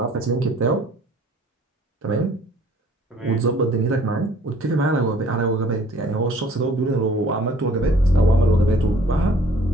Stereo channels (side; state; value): both; normal; correlation 0.55